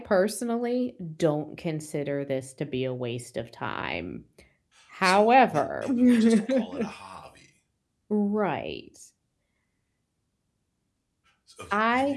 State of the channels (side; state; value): both; identical; correlation 1.00